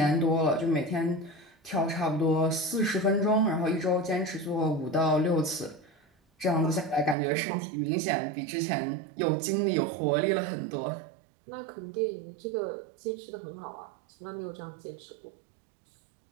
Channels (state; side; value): drops out; left; at 7.2 s